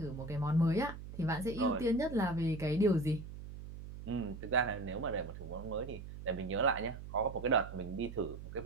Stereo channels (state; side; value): noise; right; hum, 11 dB below the sound